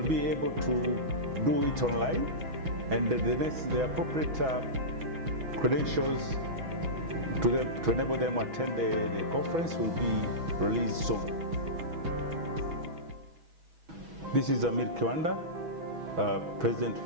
be able to do it online, and the appropriate credentials to enable them to attend the conference will be released soon. This is Amir Kiwanda, President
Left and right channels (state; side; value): late; left; 6.1 ms